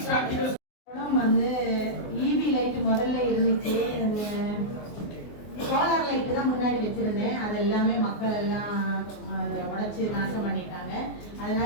வந்து ஈவி லைட் முதல்ல இருந்துச்சு, சோலார் லைட்டு தான் முன்னாடி வச்சிருந்தேன். அது எல்லாமே மக்கள் எல்லாம் உடைச்சு நாசம் பண்ணிட்டாங்க.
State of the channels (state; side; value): late; right; 24 ms